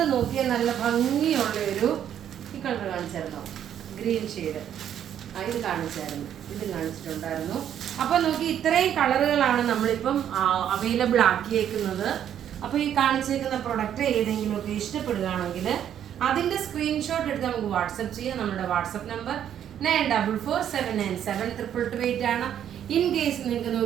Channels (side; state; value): left; quieter; 9.9 dB